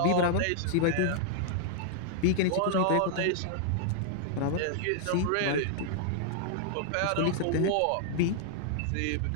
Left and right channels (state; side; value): different; both; correlation -0.01